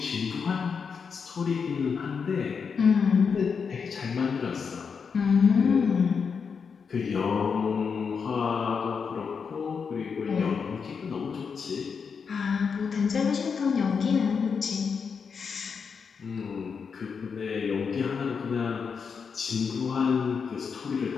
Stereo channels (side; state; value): right; quieter; 5.9 dB